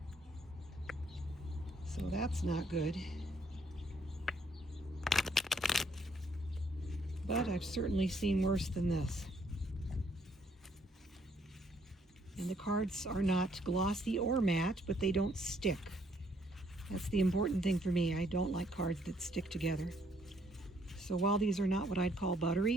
so that's not good. But I've certainly seen worse than this. And the cards are not glossy or matte, but they don't stick. That's the important thing for me. I don't like cards that stick together. So while these are not what I'd call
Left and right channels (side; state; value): both; normal; correlation 0.68